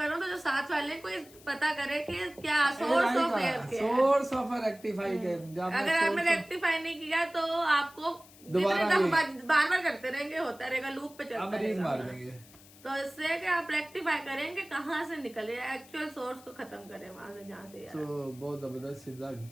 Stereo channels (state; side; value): noise; left; hiss, 23 dB below the sound